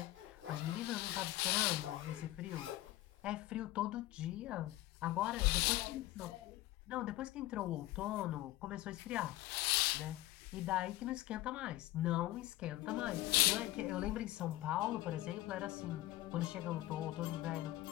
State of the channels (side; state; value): right; quieter; 16.8 dB